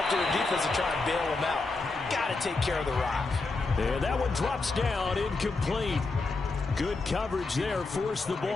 to the defense to try and bail them out. Got to take care of the rock. Yeah, that one drops down, incomplete. Good coverage there. Forced the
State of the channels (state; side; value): quieter; right; 3.6 dB